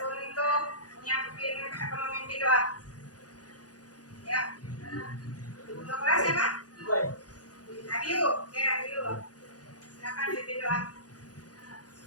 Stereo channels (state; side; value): late; right; 0.68 ms